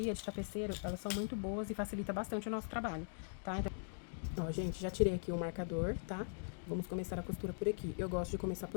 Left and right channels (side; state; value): right; silent; digital silence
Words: de tapeceiro. Elas são muito boas e facilita bastante o nosso trabalho, tá? Então, ó, gente, já tirei aqui o marcador, tá? Vamos começar a costura por aqui. Eu gosto de começar